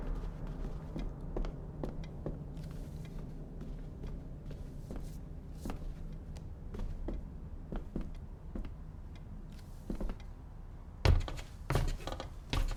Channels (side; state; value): both; identical; correlation 1.00